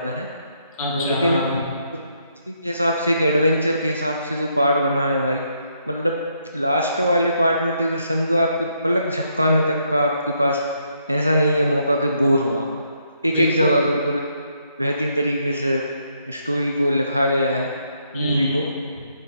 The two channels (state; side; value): inverted; both; correlation -0.74